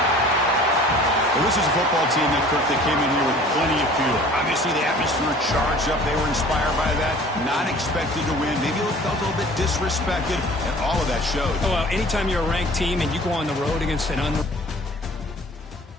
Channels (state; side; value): normal; both; correlation 0.48